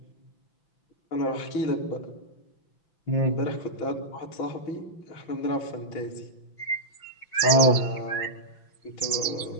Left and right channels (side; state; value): right; late; 5.9 ms